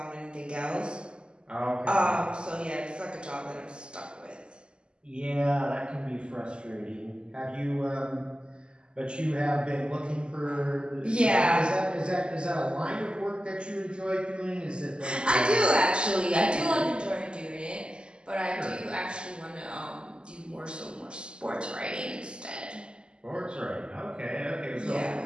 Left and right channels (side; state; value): left; late; 0.050 ms